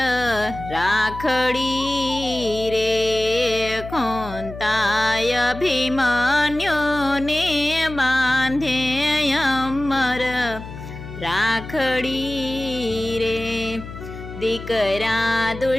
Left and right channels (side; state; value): left; noise; hum, 12 dB below the sound